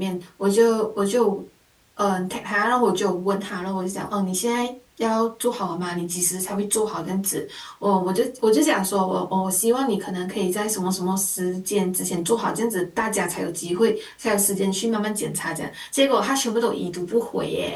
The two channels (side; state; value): both; identical; correlation 1.00